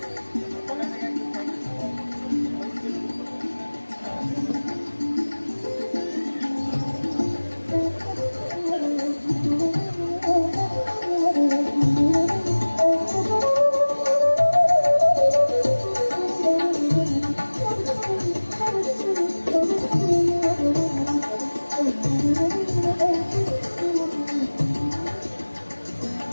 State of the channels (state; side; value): inverted; both; correlation -1.00